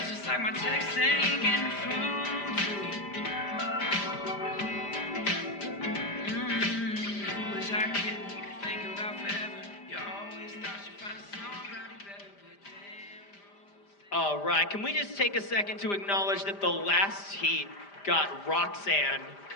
it's like my text ain't getting through to you. Who was I kidding? Thinking about forever. You always thought you'd find somebody better, but damn. All right, can we just take a second to acknowledge that the last heat got Roxanne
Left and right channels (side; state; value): right; late; 5.0 ms